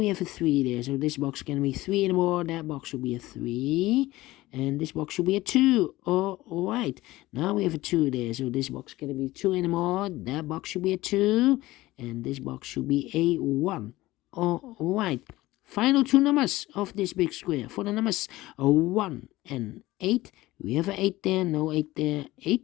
have a 3 there. So this box can't be 3 anymore. That box should be a 3. And this box should be a 2. Alright. Now we have a 2 there. So this box can't be 2 anymore. That box should be a 2. And this box should be a 1. Alright. Final 2 numbers of this big square for the numbers 1 and 8. We have an 8 there, no 8 there.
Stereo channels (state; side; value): quieter; right; 17.9 dB